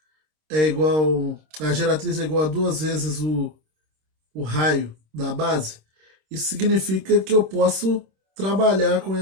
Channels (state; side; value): late; left; 26 ms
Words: é igual, a geratriz é igual a duas vezes o raio da base? Isso significa que eu posso trabalhar com